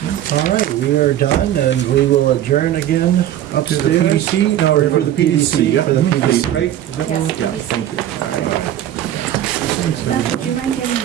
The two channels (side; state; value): left; quieter; 11.9 dB